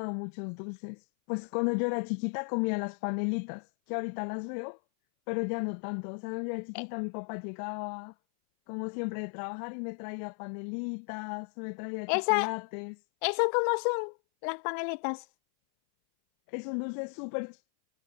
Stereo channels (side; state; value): right; silent; 55 dB below the other